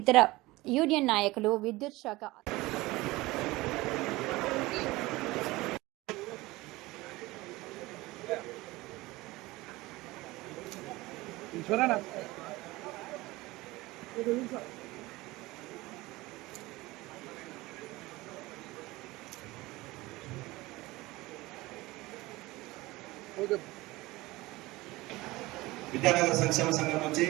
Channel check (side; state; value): left; quieter; 20.2 dB